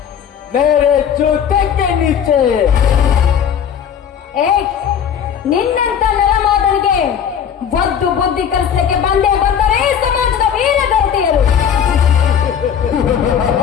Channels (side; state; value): right; quieter; 8.2 dB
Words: ಮೇರೆ ಜೂತಕ್ಕೆ ನೀಚೆ. ಏ, ನಿನ್ನಂತ ನರಮಾದನಿಗೆ ಒದ್ದು ಬುದ್ಧಿ ಕಲಿಸಲಿಕ್ಕೆ ಬಂದೇ ಬಂದರೆ ಸಮಾಜದ ವೀರಗತಿಯರು.